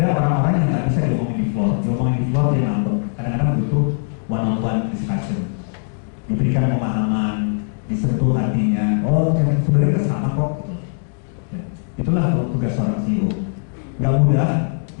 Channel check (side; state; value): right; silent; 60 dB below the other